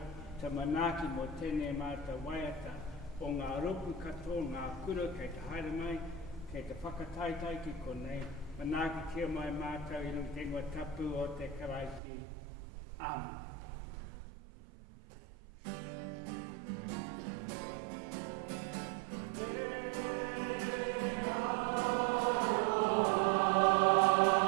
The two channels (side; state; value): left; drops out; at 12.0 s